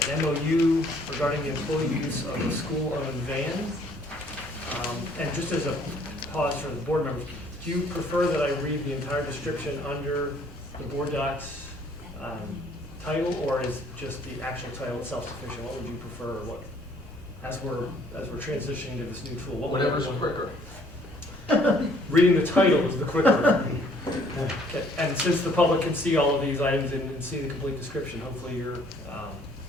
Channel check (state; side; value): normal; both; correlation 0.61